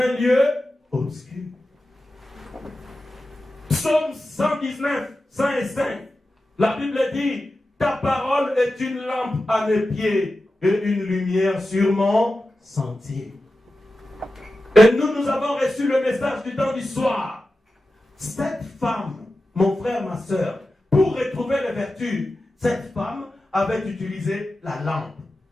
lieu obscur. Psaume 119, 105. La Bible dit, ta parole est une lampe à mes pieds et une lumière sur mon sentier. Et nous avons reçu le message du temps du soir. Cette femme, mon frère, ma soeur, pour retrouver les vertus, cette femme avait utilisé la lampe.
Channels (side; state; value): both; normal; correlation 0.93